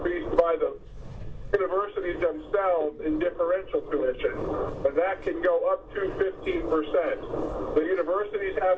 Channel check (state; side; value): identical; both; correlation 1.00